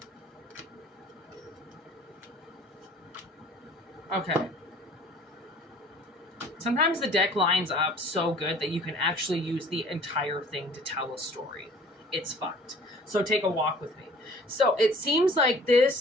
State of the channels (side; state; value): both; normal; correlation 0.51